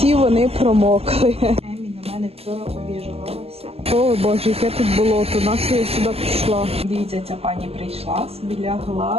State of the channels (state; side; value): late; left; 0.29 ms